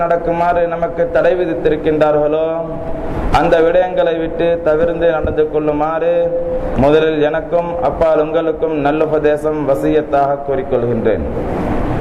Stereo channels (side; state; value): both; identical; correlation 1.00